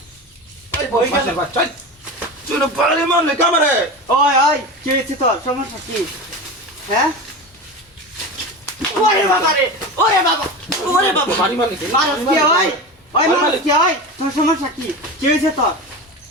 তুই পারে মারলে কামারে ওই ওই কি হয়েছে তোর সমস্যা কি হ্যাঁ ওরে বাবা রে ওরে বাবা বাড়ি মারলে মানুষ কি ওই ওই মানুষ কি ওই তোর সমস্যা কি কি হয়েছে তোর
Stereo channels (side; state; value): both; normal; correlation 0.26